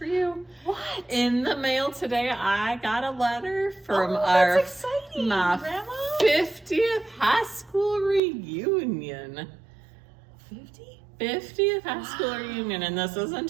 you. What? In the mail today, I got a letter from that's exciting, my Grandma. 50th high school reunion. 50th high school reunion, and this isn't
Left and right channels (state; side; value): drops out; left; at 8.2 s